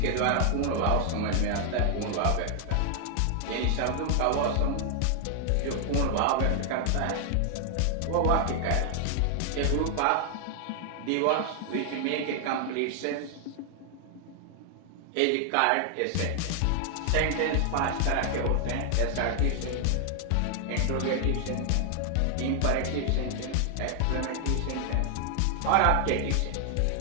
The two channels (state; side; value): different; both; correlation 0.00